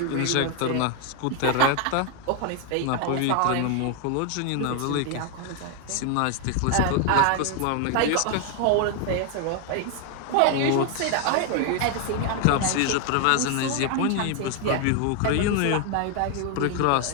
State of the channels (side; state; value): both; different; correlation 0.00